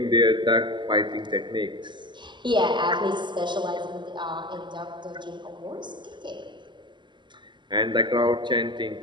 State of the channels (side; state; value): left; late; 0.22 ms